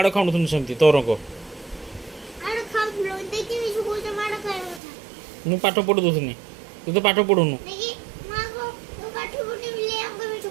ଖାଉନଥିଲି ସେମିତି ତୋର କ ମୁଁ ପାଠ ପଢ଼ି ଦେଉଥିଲି ତୁ ତ ପାଠ ପଢ଼ୁନୁ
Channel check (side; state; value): left; drops out; at 4.8 s